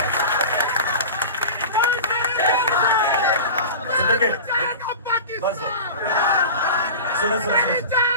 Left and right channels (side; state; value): both; inverted; correlation -0.33